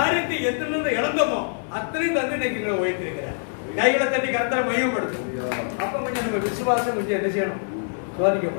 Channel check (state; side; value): silent; right; digital silence